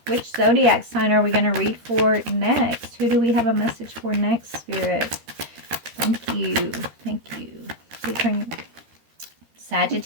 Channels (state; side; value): late; left; 13 ms